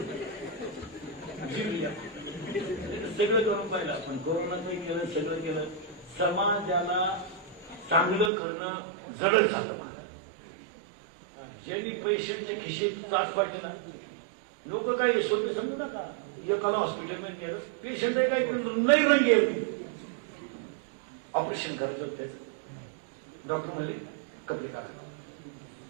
सगळं करून पाहिलं आपण कोरोनातही केलं सगळं केलं. समाजाला चांगलं करणं जडच झालं. ज्यांनी पैशांच्या खिशेत त्रास पाडले ना लोक काय यशवंत समजू नका. एकाला हॉस्पिटलमध्ये गेलं पेशंट आहे काय नाही रंगे ऑपरेशन करायचं होतं त्याचं. डॉक्टर म्हणले कपडे काढा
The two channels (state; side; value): drops out; left; at 8.3 s